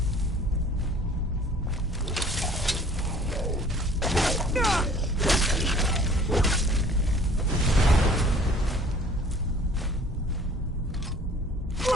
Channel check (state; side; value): normal; both; correlation 0.51